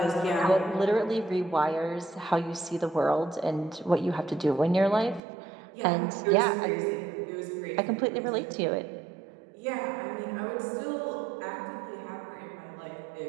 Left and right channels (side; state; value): left; drops out; at 5.2 s